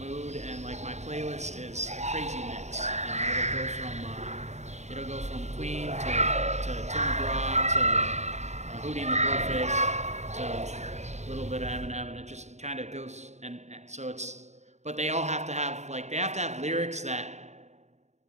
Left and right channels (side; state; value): left; late; 0.33 ms